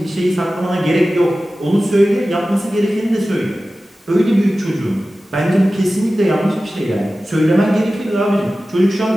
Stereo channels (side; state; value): both; normal; correlation 0.95